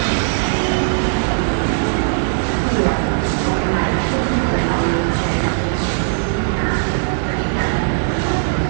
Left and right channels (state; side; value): silent; left; 62 dB below the other